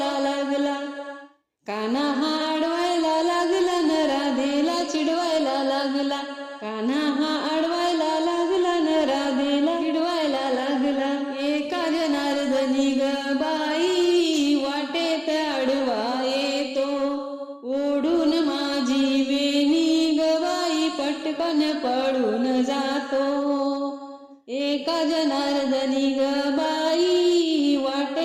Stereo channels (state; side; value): identical; both; correlation 1.00